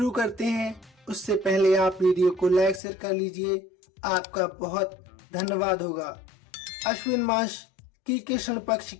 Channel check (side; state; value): right; drops out; at 2.8 s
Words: करते हैं। उससे पहले आप वीडियो को लाइक शेयर कर लीजिए, आपका बहुत धन्यवाद होगा। अश्विन मास की कृष्ण पक्ष